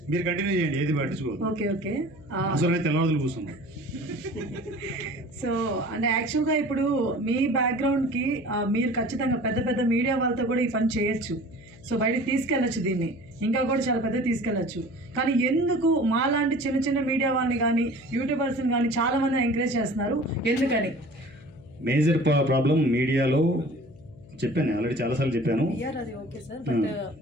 మీరు కంటిన్యూ చేయండి, ఏది పట్టించుకోదు. Okay okay. అసలు అయితే తెల్లవారులు కూర్చున్నాం. సో అంటే యాక్చువల్గా ఇప్పుడు మీ బ్యాక్గ్రౌండ్కి మీరు ఖచ్చితంగా పెద్ద పెద్ద మీడియా వాళ్ళతో కూడా ఈ పని చేయొచ్చు. సో బయటకు తీసుకెళ్ళచ్చు, దీన్ని ఇంకా కూడా చాలా పెద్ద తీసుకెళ్ళచ్చు. కానీ ఎందుకు మాలాంటి చిన్న చిన్న మీడియా వాళ్ళని కానీ యూట్యూబర్స్ని కానీ చాలామంది ఎంకరేజ్ చేస్తున్నారు, ఎందుకని? మేజర్ ప్రాబ్లం మీడియాలో చెప్పాను, ఆల్రెడీ చాలాసార్లు చెప్పాను. పిఆర్ అది ఓకే సార్, బట్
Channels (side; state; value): left; noise; hum, 22 dB below the sound